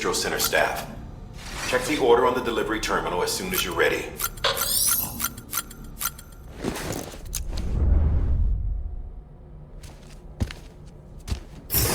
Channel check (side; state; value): both; identical; correlation 1.00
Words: center staff. Check the order on the delivery terminal as soon as you're ready.